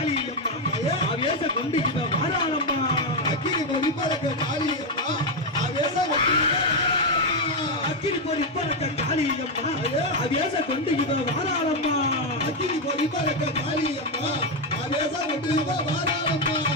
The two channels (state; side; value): normal; both; correlation 0.06